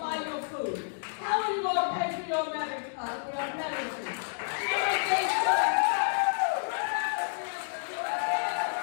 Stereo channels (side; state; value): right; silent; digital silence